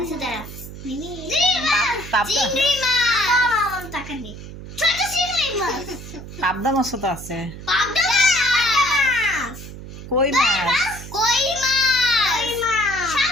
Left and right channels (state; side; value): noise; right; hum, 13 dB below the sound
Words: আচ্ছা দাঁড়া, চিংড়ি মাছ, টাকা নেই, ছোট চিংড়ি মাছ, পাবদা মাছও তো আছে, পাবদা মাছ, কই মাছ, কই মাছ,